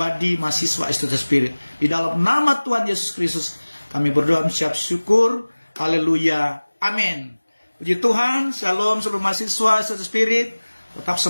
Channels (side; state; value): both; inverted; correlation -1.00